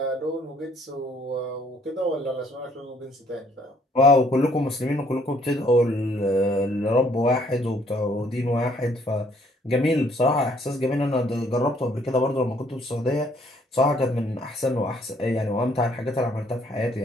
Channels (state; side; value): normal; both; correlation 0.65